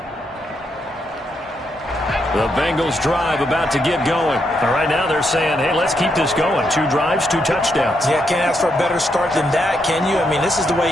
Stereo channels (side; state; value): both; normal; correlation 0.79